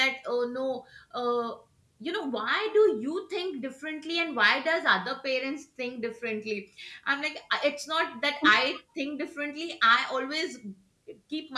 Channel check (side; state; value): both; identical; correlation 1.00